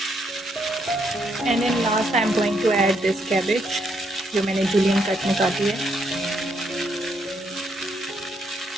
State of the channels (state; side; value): normal; both; correlation 0.75